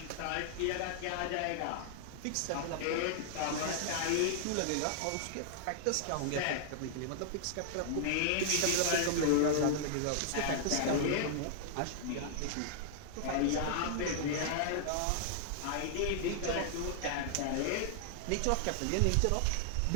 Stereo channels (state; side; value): different; both; correlation -0.01